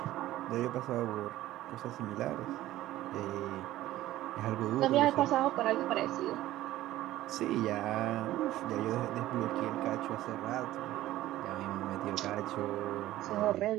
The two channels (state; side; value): quieter; left; 15.0 dB